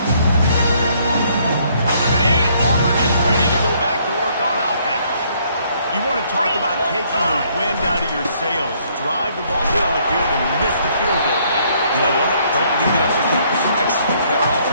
Auburn is ready to go back to work on offense. You want to talk about taking the wind out of your sails. Drive the ball down the field and miss the field goal. You know what? Don't leave it up to him. Execute better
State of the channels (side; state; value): both; inverted; correlation -0.66